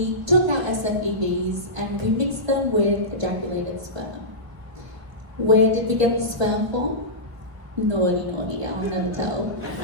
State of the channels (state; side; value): late; left; 1.2 ms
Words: took our SFEVs and we mixed them with ejaculated sperm. Where did we get the sperm from? Naughty, I'll never tell.